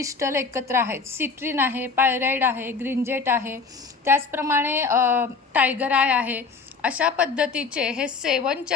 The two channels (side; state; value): right; quieter; 4.8 dB